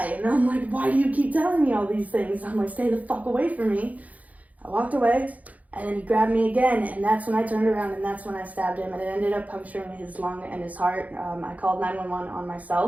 And I'm like, why do you keep telling me all these things? I'm like, stay the fuck away from me. I walked away, and then he grabbed me again, and that's when I turned around, and that's when I stabbed him, and it ended up puncturing his lung and his heart. I called 911 on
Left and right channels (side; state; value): left; late; 0.074 ms